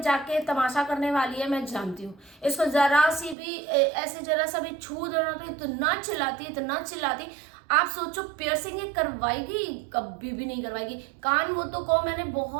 जाके तमाशा करने वाली है, मैं जानती हूँ। इसको जरा सी भी ऐसे जरा सा भी छू देना तो इतना चिल्लाती। आप सोचो पियर्सिंग ये करवाएगी? कभी भी नहीं करवाएगी। कान वो तो को मैंने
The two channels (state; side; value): drops out; left; at 3.4 s